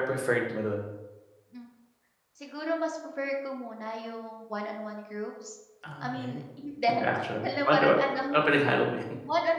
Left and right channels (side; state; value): both; identical; correlation 1.00